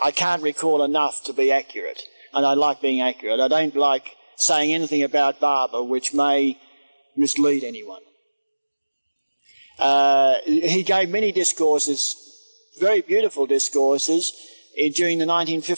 recall enough to be accurate. And I like being accurate. I don't like saying anything about Barber which may mislead anyone. He gave many discourses, very beautiful discourses, during the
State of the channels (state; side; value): inverted; both; correlation -1.00